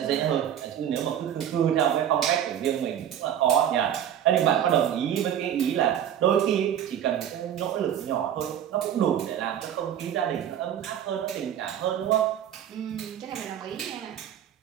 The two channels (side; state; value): left; quieter; 10.0 dB